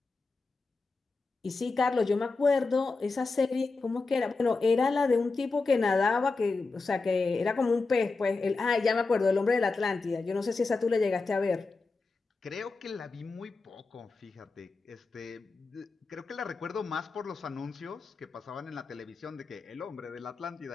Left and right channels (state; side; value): quieter; right; 3.9 dB